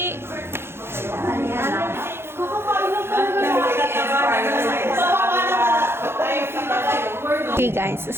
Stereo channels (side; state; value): left; late; 0.12 ms